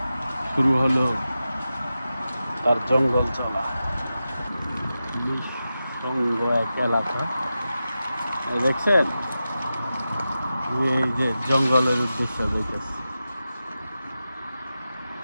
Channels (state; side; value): inverted; both; correlation -0.92